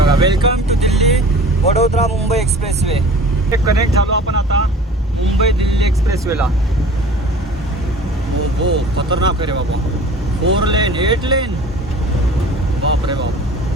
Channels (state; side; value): normal; both; correlation 0.44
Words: welcome to Delhi Vadodara Mumbai expressway. हे कनेक्ट झालो आपण आता मुंबई दिल्ली एक्सप्रेसवेला. हो खतरनाक आहे रे बाबा. 4 लेन 8 लेन, बाप रे बाप.